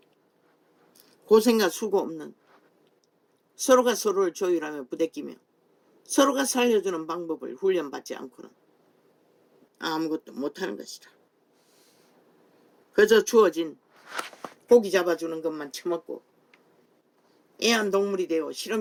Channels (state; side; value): identical; both; correlation 1.00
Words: 고생과 수고 없는 서로가 서로를 조율하며 부대끼며 서로가 살려주는 방법을 훈련받지 않고는 아무것도 못하는 것이다. 그저 주어진 고기 잡아주는 것만 처먹고 애완동물이 되어